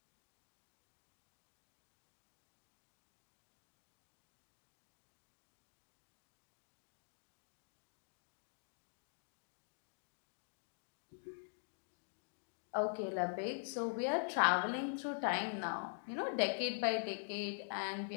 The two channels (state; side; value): silent; right; digital silence